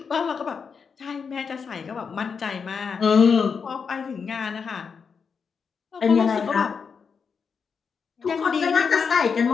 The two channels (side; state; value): right; quieter; 5.9 dB